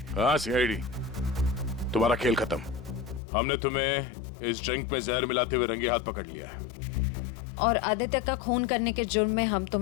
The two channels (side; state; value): right; drops out; at 3.2 s